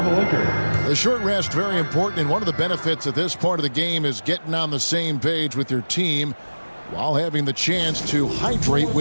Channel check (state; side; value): inverted; both; correlation -1.00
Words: The short rest, very important, and one of the benefits of this part of the game is getting on the same page with your team while having the chance to hydrate